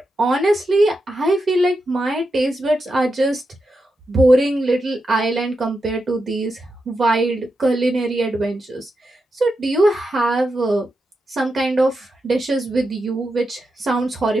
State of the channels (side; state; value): both; normal; correlation 0.87